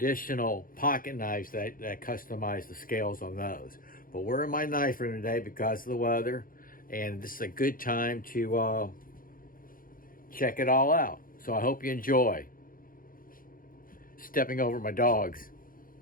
pocket knives that customize the scales on those. But we're in my knife room today because of the weather, and this is a good time to check it all out. So I hope you enjoy. Stepping over my dogs.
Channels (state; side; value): late; right; 0.41 ms